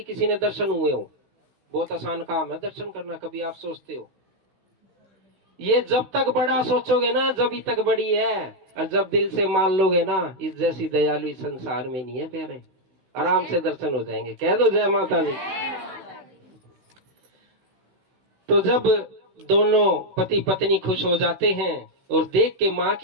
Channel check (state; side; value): late; left; 16 ms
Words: किसी ने दर्शन हुए हो। बहुत आसान काम है दर्शन करना, कभी आप सोचते हो? ये जब तक बड़ा सोचोगे ना जब तक बड़ी है, और जब दिल से मान लोगे ना, इस जैसी दयालु इस संसार में नहीं है प्यारे। आराम से दर्शन हो जाएंगे। कह दो जय माता दी। तो जब दोनों पति पत्नी खुश हो जाते हैं और देख के माँ